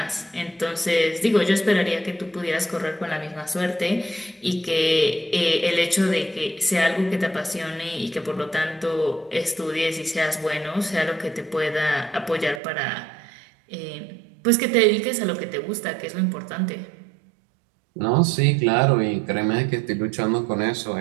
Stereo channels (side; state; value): left; drops out; at 12.6 s